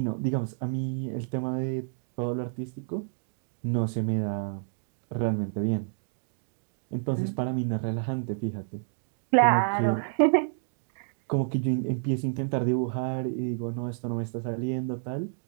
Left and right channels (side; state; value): left; silent; digital silence